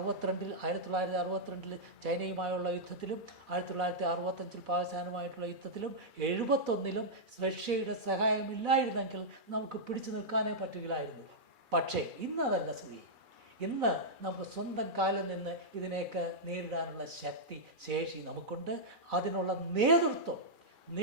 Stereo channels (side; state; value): left; late; 2.4 ms